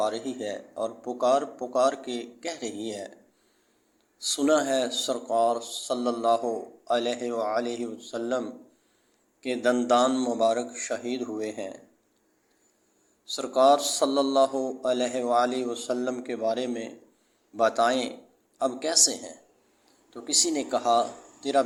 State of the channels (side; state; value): both; identical; correlation 1.00